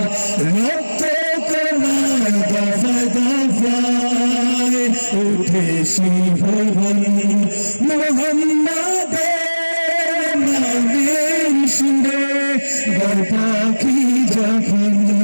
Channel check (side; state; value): both; inverted; correlation -1.00